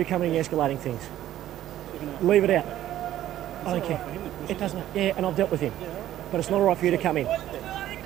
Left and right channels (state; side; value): quieter; left; 12.9 dB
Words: coming and escalating things. Leave it out. I don't care. It doesn't. Yeah, and I've dealt with him. But it's not all right for you to come in.